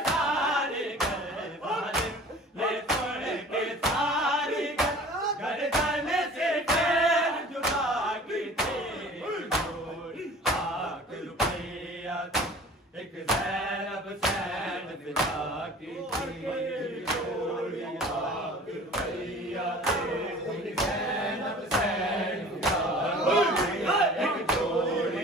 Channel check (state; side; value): normal; both; correlation 0.45